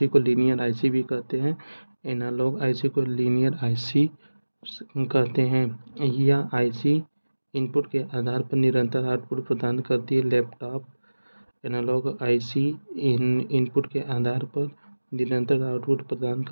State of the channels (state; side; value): inverted; both; correlation -1.00